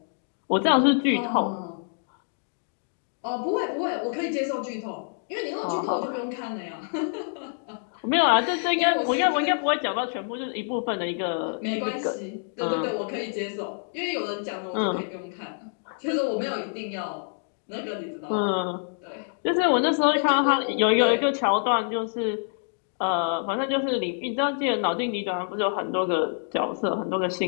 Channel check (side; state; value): right; silent; digital silence